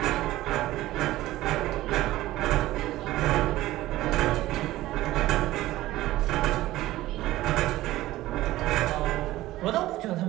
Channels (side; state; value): left; quieter; 16.3 dB